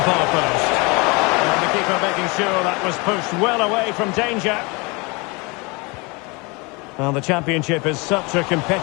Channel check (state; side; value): quieter; right; 27.8 dB